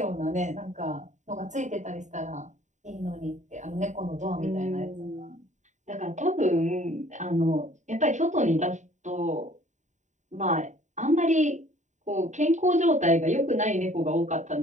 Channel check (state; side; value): late; left; 0.35 ms